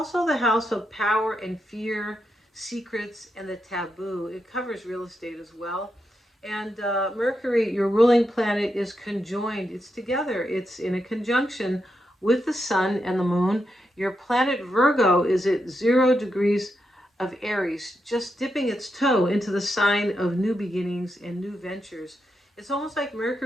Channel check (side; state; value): both; normal; correlation 0.85